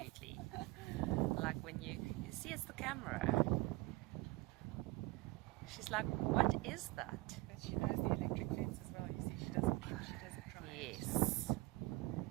Like when you see it's the camera. She's like, what is that? But she knows the electric fence as well. You see, she doesn't try. Yes.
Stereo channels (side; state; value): left; quieter; 20.8 dB